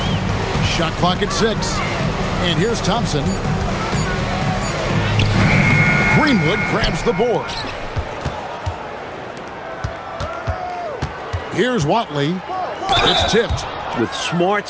Shot clock at 6. And here's Thompson. Greenwood grabs the board. Here's Watley. It's tipped. With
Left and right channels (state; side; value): identical; both; correlation 1.00